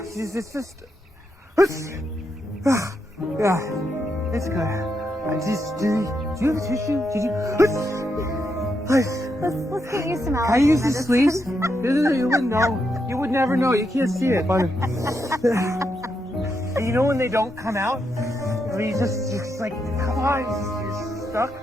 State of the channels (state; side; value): normal; both; correlation 0.82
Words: it's just... Yeah, it's good. Do you have a tissue? Did you... Let's get you some Can I use these sleeves? You wouldn't know. You would never know. You can't see it. But... And you know when they don't come out? I mean, it's like, come on, you're stuck.